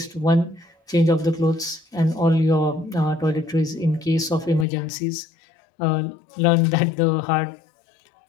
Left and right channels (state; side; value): drops out; right; at 4.7 s